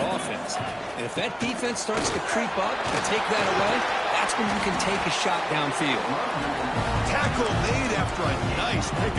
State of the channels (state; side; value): identical; both; correlation 1.00